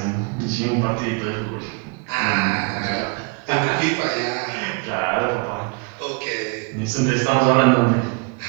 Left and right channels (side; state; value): left; quieter; 32.1 dB